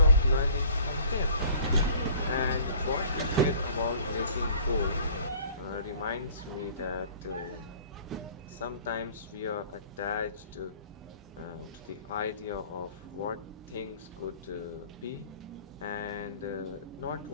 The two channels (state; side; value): inverted; both; correlation -0.51